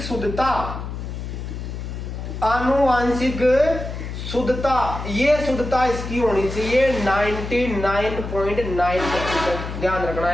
शुद्धता, ये शुद्धता इसकी होनी चाहिए 99.9%। ध्यान रखना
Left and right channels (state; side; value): noise; left; hum, 7 dB below the sound